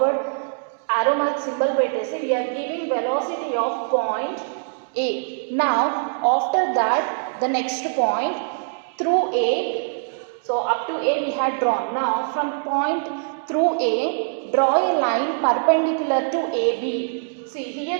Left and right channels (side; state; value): left; silent; digital silence